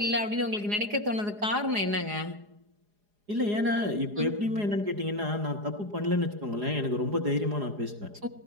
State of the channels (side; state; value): left; late; 4.8 ms